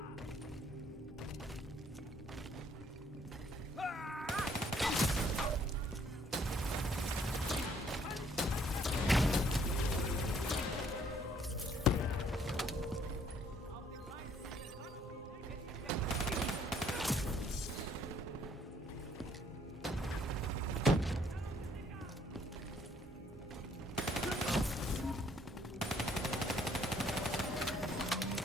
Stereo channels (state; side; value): normal; both; correlation 0.64